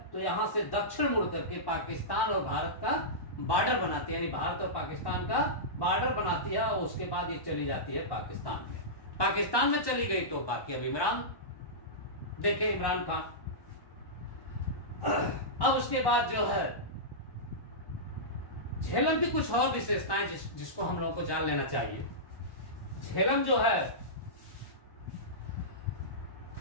तो यहां से दक्षिण मुड़ करके पाकिस्तान और भारत का बॉर्डर बनाती है, यानी भारत और पाकिस्तान का बॉर्डर बनाती है और उसके बाद ये चली जाती है पाकिस्तान में। पाकिस्तान में चली गई तो बाकी अब इमरान देखे, इमरान खान। अब उसके बाद जो है झेलम की कुछ और विशेषताएं जिसको हम लोगों को जान लेना चाहिए। झेलम जो है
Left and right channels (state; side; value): late; right; 1.1 ms